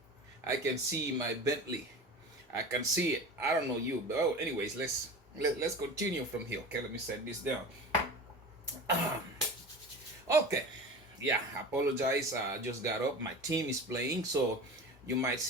I can see my Bentley. I can see it. I don't know you, but oh, anyways, let's continue from here. Okay, let me set this down. Okay, yeah, I apologize. I just got up. My team is playing, so you might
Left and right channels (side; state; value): both; normal; correlation 0.33